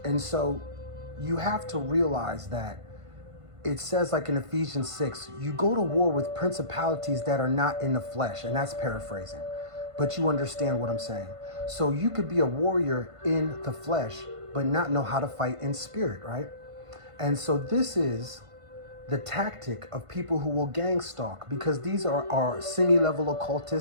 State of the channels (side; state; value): left; late; 1.5 ms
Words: so you have to realize that it says, like in Ephesians 6, you go to war with principalities that are not in the flesh, and that's paraphrasing, but you understand what I'm saying. So you could be a warrior in the flesh, but not know how to fight in spirit, right? And so this is the tactic of people who will gang stalk, because these are semi-level